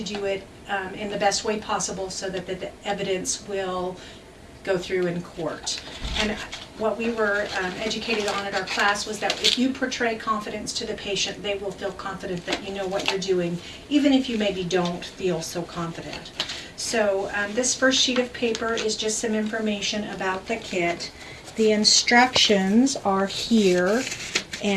do it in the best way possible so that the evidence will go through in court. And what we were educated on at our class was that if you portray confidence to the patient, they will feel confident that you know what you're doing, even if you maybe don't feel so confident. So this first sheet of paper is just some information about the kit. The instructions are here,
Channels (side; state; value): both; identical; correlation 1.00